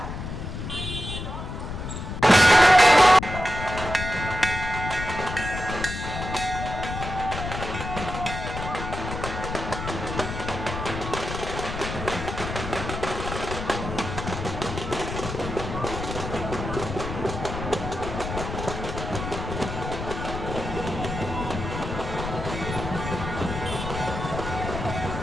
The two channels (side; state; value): left; noise; rumble, 6 dB below the sound